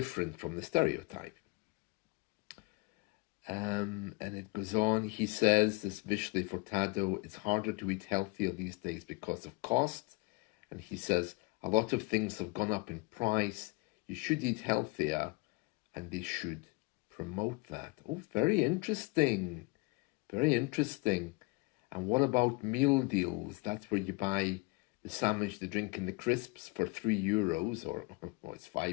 from the stereotype. And it goes on, he says, this Vishli Furtado, it's harder to eat healthier these days because of cost. And he says, a lot of things have gone up in price. You should eat healthier, and they should promote that. Oh, very interesting. Very interesting. And what about meal deals? That's where you buy the sandwich, the drink, and the crisps for €3, or well, it's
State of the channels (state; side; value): quieter; right; 25.5 dB